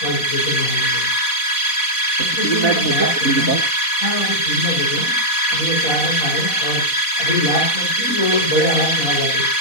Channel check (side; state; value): right; late; 4.1 ms